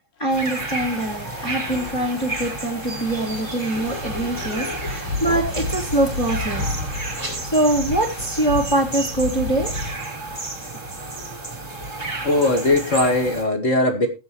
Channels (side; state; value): right; late; 3.7 ms